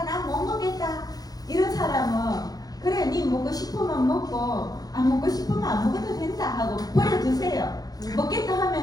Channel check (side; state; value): right; late; 0.18 ms